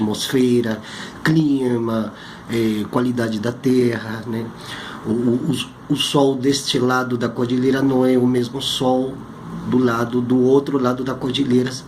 clima, qualidade da terra, né. O sol deste lado da cordilheira não é o mesmo sol do outro lado da cordilheira,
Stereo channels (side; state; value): both; identical; correlation 1.00